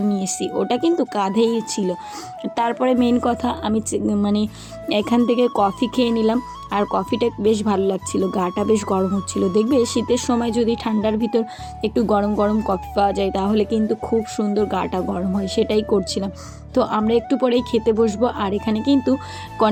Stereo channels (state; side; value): identical; both; correlation 1.00